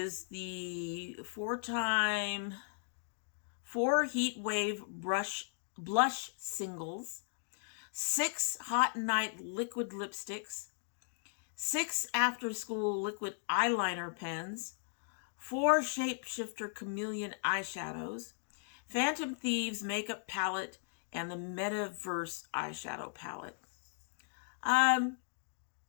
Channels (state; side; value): silent; right; digital silence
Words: the 4 Heat Wave blush singles, 6 Hot Night liquid lipsticks, 6 After School liquid eyeliner pens, 4 Shapeshifter Chameleon eyeshadows, Phantom Thieves makeup palette, and the Metaverse eyeshadow palette.